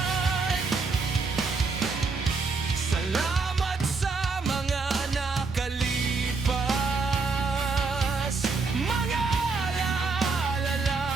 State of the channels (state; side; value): quieter; left; 4.3 dB